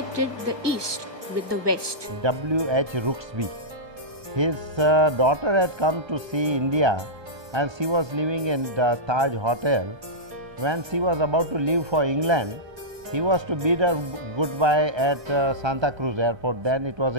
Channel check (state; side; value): late; left; 1.2 ms